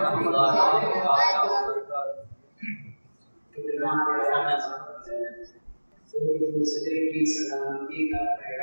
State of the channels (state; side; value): inverted; both; correlation -1.00